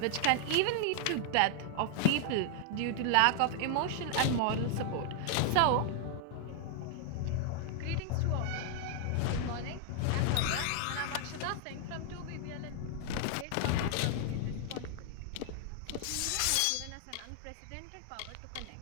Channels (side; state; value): both; different; correlation 0.00